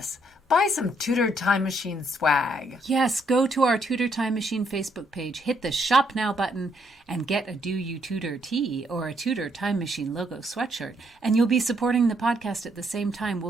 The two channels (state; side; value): normal; both; correlation 0.72